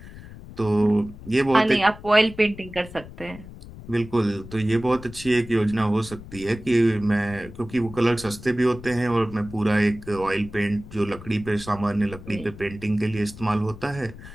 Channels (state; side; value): noise; left; rumble, 16 dB below the sound